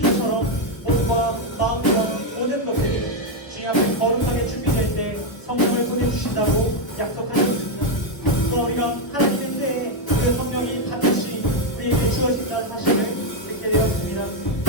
몸과 마음과 모든 것들이 주님 앞에 거룩하게 준비될 때 성령을 보내주신다고 약속하셨습니다. 또 우리가 하나님의 때에 그 성령이 반드시 우리에게 주어진다는 사실을 듣게 되었습니다.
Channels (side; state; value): right; late; 1.3 ms